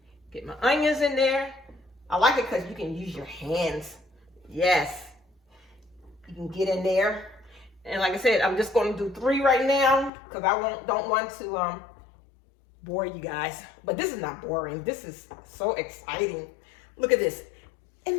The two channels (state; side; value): drops out; right; at 10.1 s